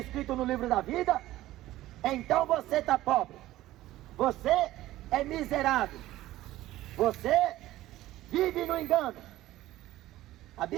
no livro da vida, então você está pobre, você é miserável, você vive no engano. A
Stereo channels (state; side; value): quieter; left; 15.6 dB